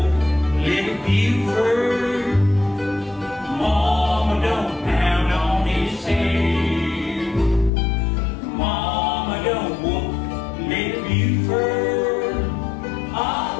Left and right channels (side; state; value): right; drops out; at 7.7 s